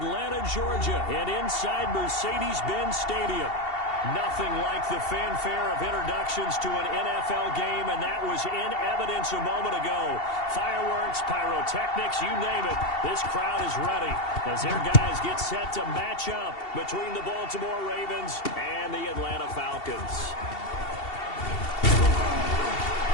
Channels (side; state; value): right; late; 2.7 ms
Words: Georgia, and inside Mercedes-Benz Stadium. Nothing like the fanfare of introductions to an NFL game, and that was in evidence a moment ago. Fireworks, pyrotechnics, you name it. This crowd is ready as their guys get set to match up between the Baltimore Ravens and the Atlanta Falcons.